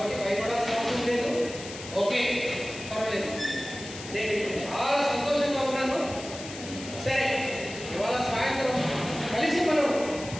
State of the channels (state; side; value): noise; left; hiss, 12 dB below the sound